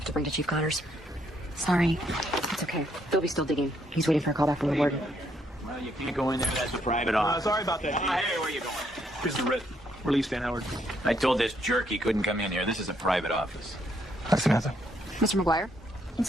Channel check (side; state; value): both; normal; correlation 0.72